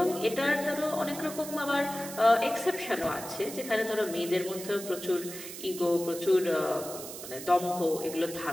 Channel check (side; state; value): right; noise; hiss, 11 dB below the sound